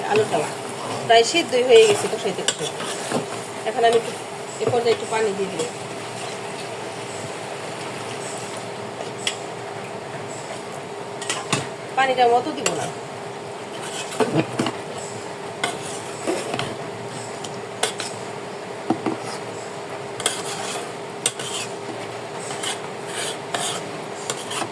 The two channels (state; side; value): identical; both; correlation 1.00